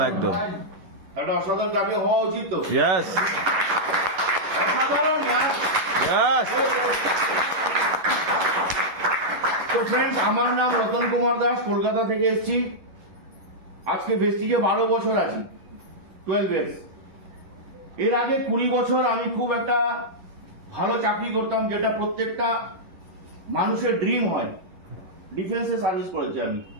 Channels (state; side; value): late; left; 11 ms